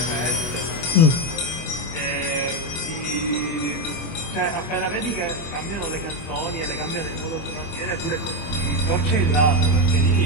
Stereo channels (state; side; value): late; right; 25 ms